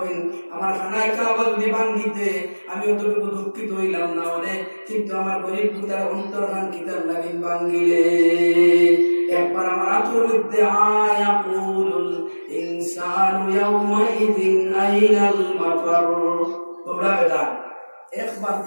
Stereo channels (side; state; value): both; inverted; correlation -1.00